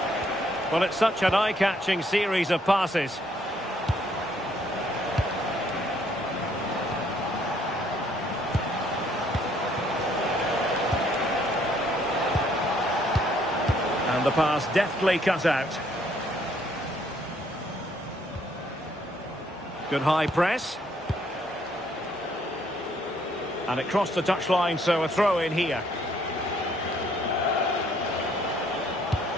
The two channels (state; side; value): normal; both; correlation 0.66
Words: Well, it's such an eye-catching series of passes. And the pass deftly cut out. Good high press. And it crossed the touchline, so a throw in here.